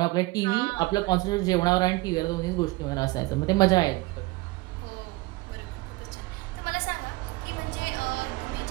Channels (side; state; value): left; quieter; 21.6 dB